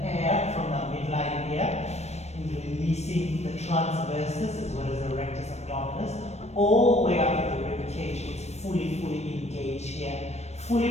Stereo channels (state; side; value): late; right; 0.32 ms